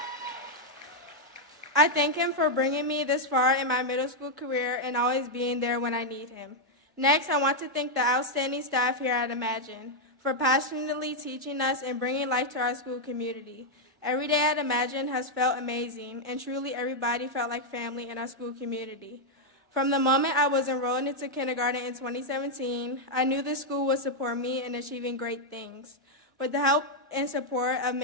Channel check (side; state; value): both; normal; correlation -0.01